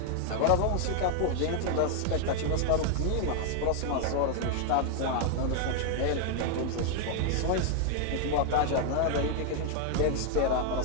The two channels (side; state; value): both; different; correlation 0.00